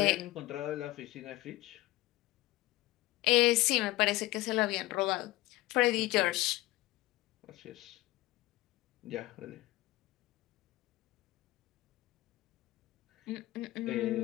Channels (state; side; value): quieter; right; 18.4 dB